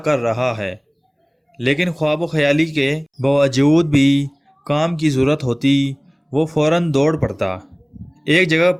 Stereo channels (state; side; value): identical; both; correlation 1.00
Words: رہا ہے، لیکن خواب و خیالی کے باوجود بھی کام کی ضرورت ہوتی، وہ فوراً دوڑ پڑتا۔ ایک جگہ